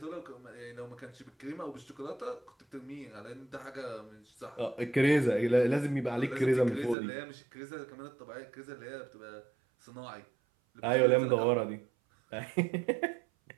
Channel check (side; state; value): left; drops out; at 7.0 s